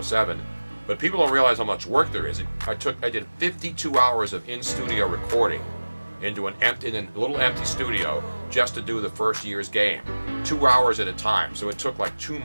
07. But people don't realize how much work there is. I did 52 hours of in-studio recording in a little empty studio just to do the first year's game, 2 hours at a time. So it took like 2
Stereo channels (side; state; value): both; inverted; correlation -1.00